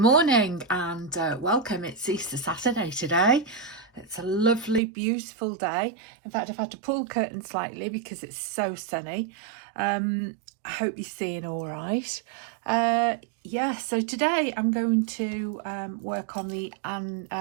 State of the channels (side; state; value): left; drops out; at 4.8 s